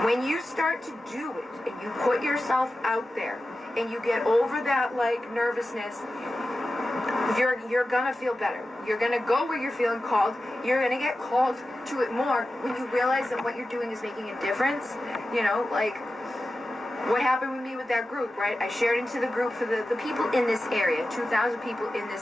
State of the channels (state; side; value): normal; both; correlation 0.94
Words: When you start to do it and you put yourself out there and you get over that, like, nervousness, you're gonna feel better. You're gonna go where you're feeling called. You're gonna get called to it more when you realize that what you're doing is making a difference. You know, like what happened with me with that group, right? I shared into the group for the people in this area, 2,000 people in